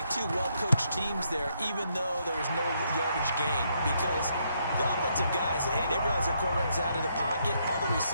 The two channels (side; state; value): both; inverted; correlation -0.75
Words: 2 well-coached teams there, even though there was no yardage gain. Because the offensive guys, hey, they realized their quarterback was out of the pocket. All the